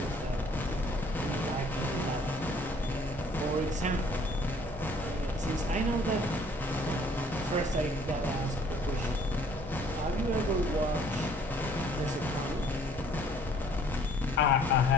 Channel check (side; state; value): both; normal; correlation 0.58